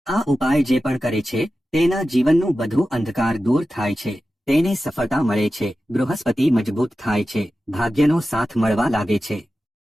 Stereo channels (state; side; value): normal; both; correlation 0.93